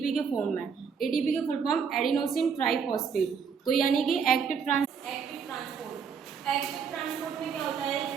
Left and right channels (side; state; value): left; quieter; 6.5 dB